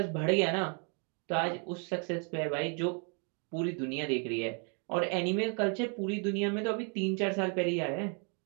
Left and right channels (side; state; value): left; quieter; 38.7 dB